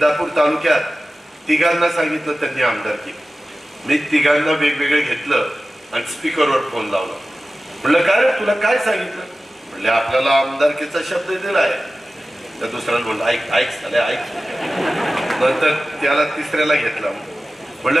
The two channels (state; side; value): normal; both; correlation 0.95